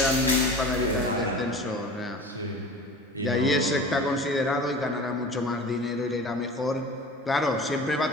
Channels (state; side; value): normal; both; correlation 0.38